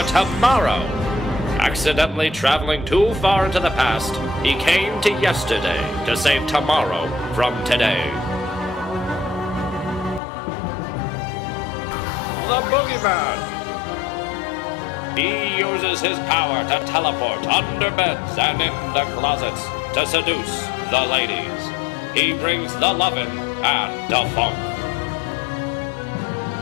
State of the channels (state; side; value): drops out; right; at 10.2 s